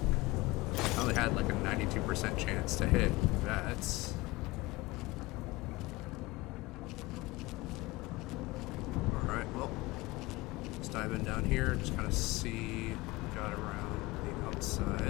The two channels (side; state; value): right; quieter; 21.0 dB